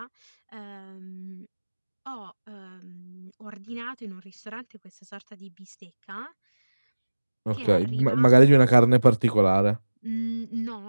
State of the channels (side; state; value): both; inverted; correlation -1.00